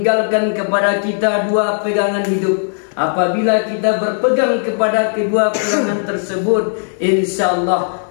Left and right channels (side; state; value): right; silent; digital silence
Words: kepada kita 2 pegangan hidup. Apabila kita berpegang kepada kedua pegangan tersebut, insyaallah